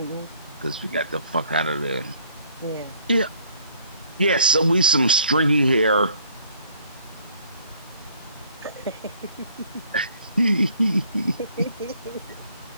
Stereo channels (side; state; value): both; inverted; correlation -0.60